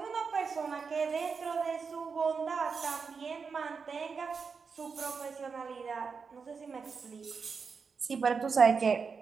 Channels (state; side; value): quieter; left; 5.4 dB